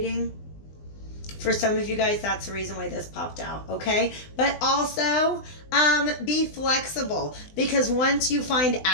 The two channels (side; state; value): right; late; 20 ms